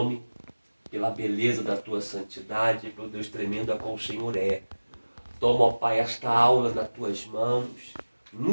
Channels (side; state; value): both; inverted; correlation -1.00